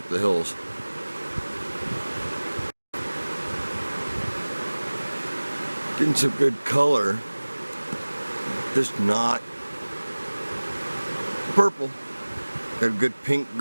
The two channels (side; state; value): both; inverted; correlation -1.00